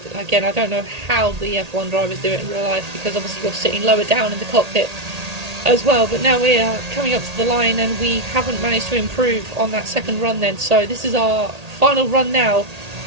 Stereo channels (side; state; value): left; late; 1.8 ms